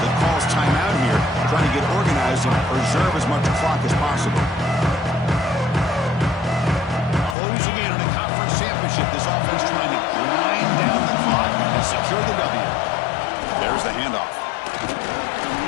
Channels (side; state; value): right; drops out; at 7.4 s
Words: calls timeout here, trying to get organized and preserve as much clock as possible. Closing in on a conference championship, this offense trying to grind down the clock and secure the W. There's the handoff.